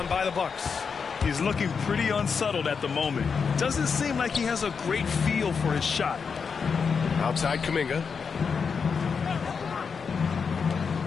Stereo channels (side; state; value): right; quieter; 5.8 dB